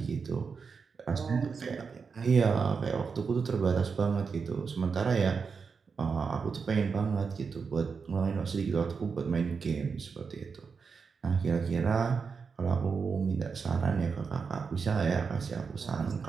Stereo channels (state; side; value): quieter; left; 5.4 dB